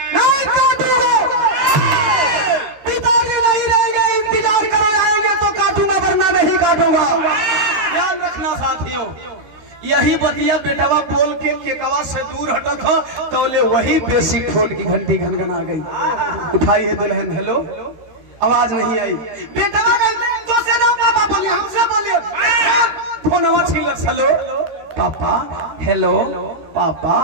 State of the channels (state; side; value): late; left; 13 ms